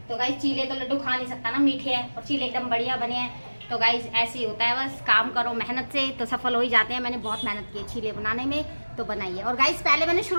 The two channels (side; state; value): both; inverted; correlation -1.00